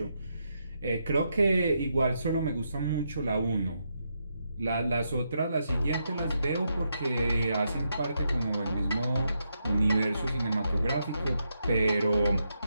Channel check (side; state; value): both; inverted; correlation -0.82